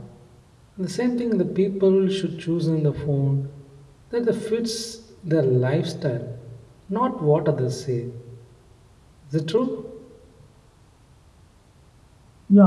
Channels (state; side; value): identical; both; correlation 1.00